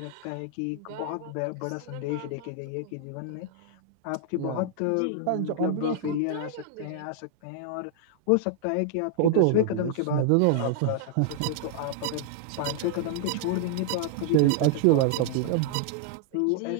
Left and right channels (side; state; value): both; different; correlation -0.01